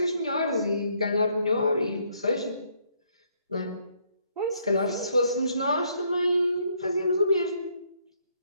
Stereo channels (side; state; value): both; inverted; correlation -0.70